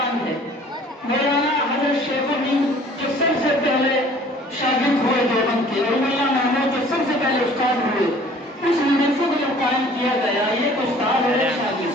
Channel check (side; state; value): both; normal; correlation 0.52